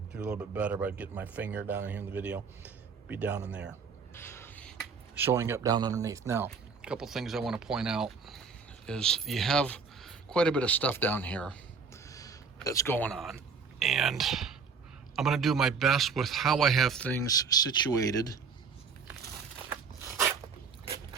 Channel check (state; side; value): quieter; left; 5.4 dB